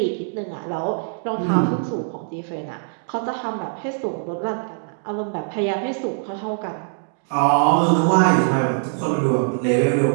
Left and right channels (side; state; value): left; silent; digital silence